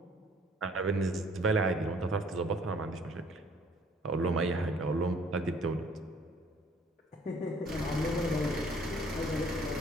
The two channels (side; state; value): both; normal; correlation 0.58